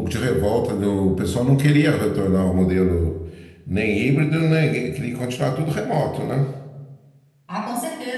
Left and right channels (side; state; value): both; identical; correlation 1.00